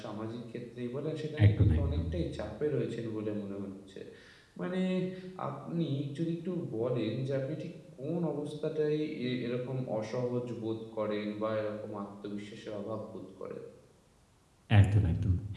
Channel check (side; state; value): both; identical; correlation 1.00